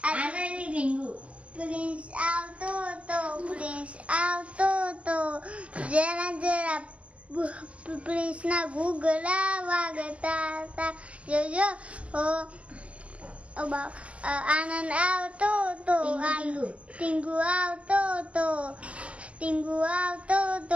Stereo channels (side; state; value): left; late; 0.062 ms